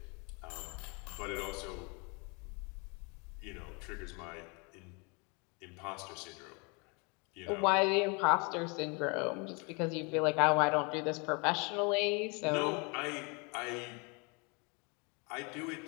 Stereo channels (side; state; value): right; quieter; 31.4 dB